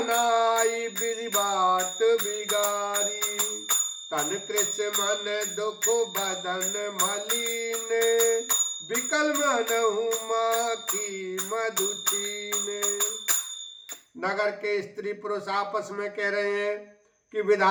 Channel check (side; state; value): both; identical; correlation 1.00